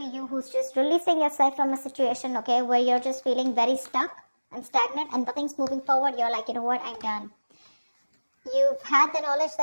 you who's just releasing yourself from a situation, okay, where you're just feeling very stuck and stagnant and nothing's moving forward. You're like, you know what, I'm done. You've had the knowledge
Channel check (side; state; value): both; inverted; correlation -1.00